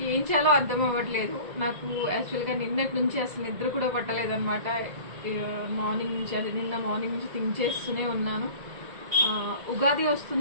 ఏం చేయాలో అర్థం అవ్వట్లేదు నాకు. యాక్చువల్గా నిన్నటి నుంచి అసలు నిద్ర కూడా పట్టలేదు అనమాట. మార్నింగ్ నుంచి నిన్న మార్నింగ్ నుంచి థింక్ చేస్తూనే ఉన్నాను. ఉగాది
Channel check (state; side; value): late; left; 2.0 ms